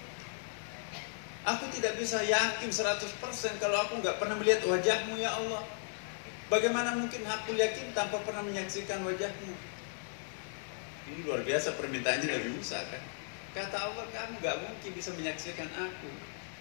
Aku tidak bisa yakin 100% kalau aku nggak pernah melihat wajahmu ya Allah. Bagaimana mungkin aku yakin tanpa pernah menyaksikan wajahmu? Ini luar biasa permintaannya Nabi Musa kan. Kata Allah, kamu nggak mungkin bisa menyaksikan aku.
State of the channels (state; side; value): silent; right; digital silence